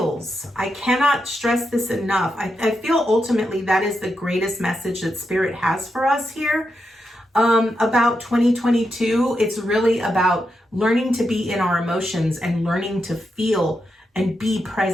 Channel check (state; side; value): normal; both; correlation 0.85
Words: I cannot stress this enough. I feel ultimately that is the greatest message that Spirit has for us here about 2022. It's really about learning to be in our emotions and learning to feel and be